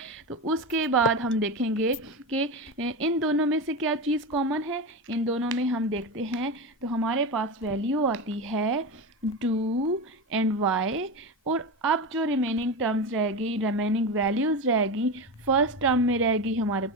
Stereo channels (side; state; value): both; normal; correlation 0.20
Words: तो उसके बाद हम देखेंगे कि इन दोनों में से क्या चीज़ कॉमन है। इन दोनों में हम देखते हैं तो हमारे पास वैल्यू आती है 2 एंड y। और अब जो रिमेनिंग टर्म्स रहेगी, रिमेनिंग वैल्यूज़ रहेगी, फर्स्ट टर्म में रहेगी हमारे